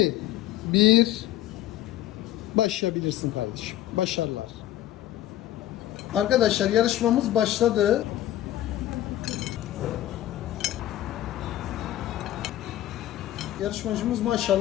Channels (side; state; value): right; quieter; 13.5 dB